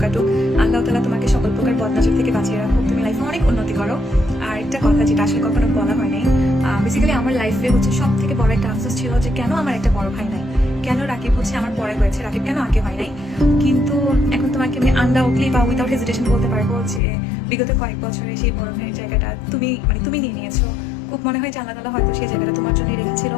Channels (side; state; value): right; drops out; at 17.0 s